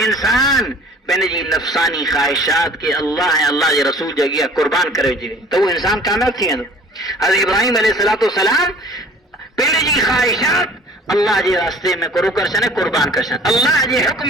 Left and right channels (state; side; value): normal; both; correlation 0.49